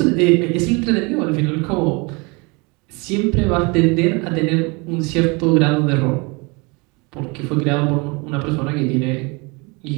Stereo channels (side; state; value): left; quieter; 28.5 dB